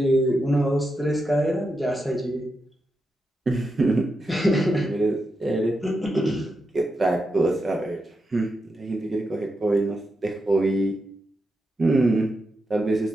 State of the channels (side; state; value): both; normal; correlation 0.87